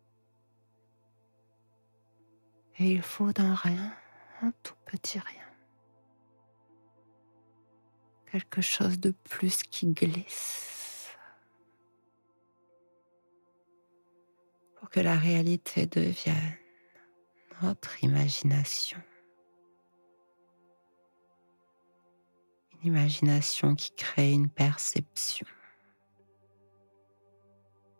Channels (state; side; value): inverted; both; correlation -1.00